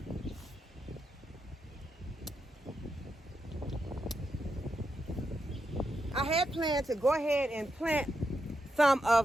I had planned to go ahead and plant some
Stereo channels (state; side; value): normal; both; correlation 0.84